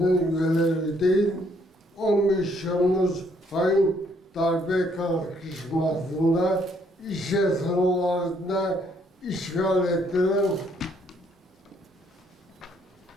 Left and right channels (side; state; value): both; normal; correlation 0.68